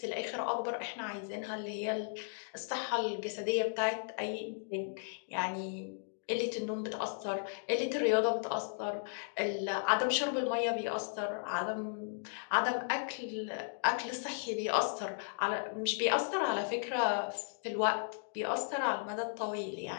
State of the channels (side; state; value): right; silent; digital silence